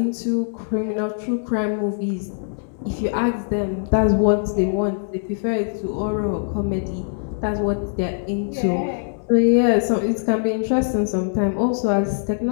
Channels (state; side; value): silent; right; 64 dB below the other